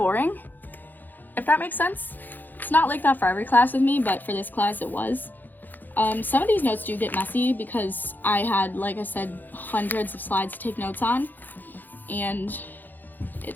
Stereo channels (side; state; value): right; late; 0.087 ms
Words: if that makes sense. It's not like that for every class with me, but for this class it was. Some of these notes do get messy because I had, like I said, hundreds of slides to take notes on, and it